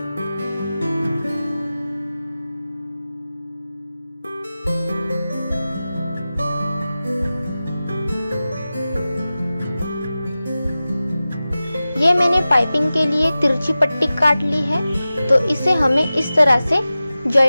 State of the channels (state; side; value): inverted; both; correlation -0.96